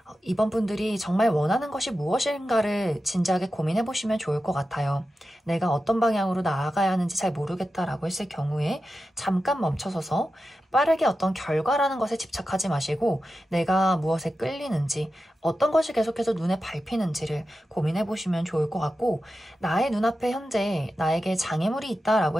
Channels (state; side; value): normal; both; correlation 0.91